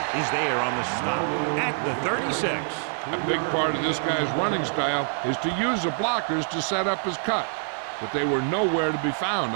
is there on the stop at the 36. A big part of this guy's running style is to use the blockers to set up his cut, but they were nowhere to be found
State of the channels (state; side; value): silent; left; 61 dB below the other